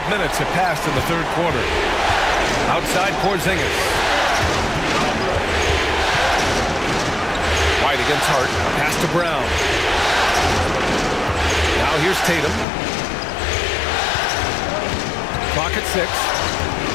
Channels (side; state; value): right; drops out; at 12.7 s